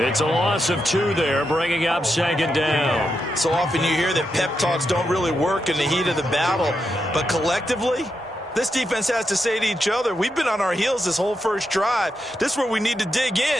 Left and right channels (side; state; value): both; normal; correlation 0.85